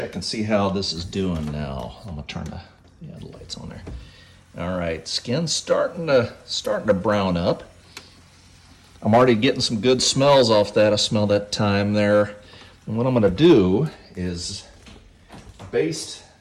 and see how this is doing now. I'm gonna turn the lights on there. All right, skin's starting to brown up. I'm already getting some good smells off that. I smell that thyme there. And what I'm gonna do is baste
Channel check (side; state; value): both; identical; correlation 1.00